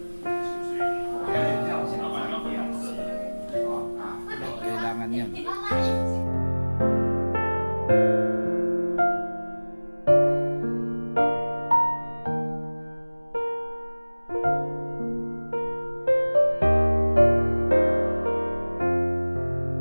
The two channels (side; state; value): both; inverted; correlation -1.00